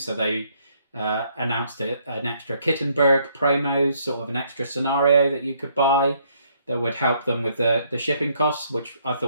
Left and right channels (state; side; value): inverted; both; correlation -0.68